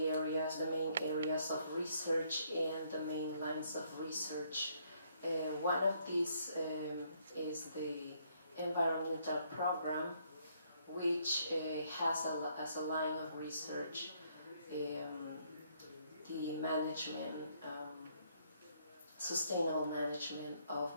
areas, the main areas of research and the main lines of research. One of these is the environmental program, which has as a line of research the management, sustainable management of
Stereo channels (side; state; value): both; inverted; correlation -0.69